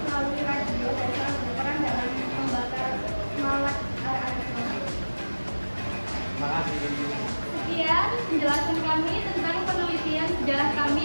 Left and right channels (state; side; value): inverted; both; correlation -1.00